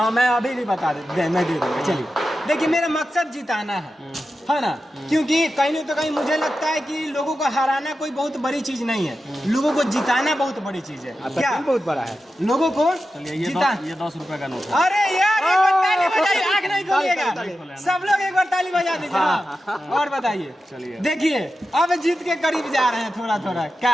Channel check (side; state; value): both; normal; correlation 0.91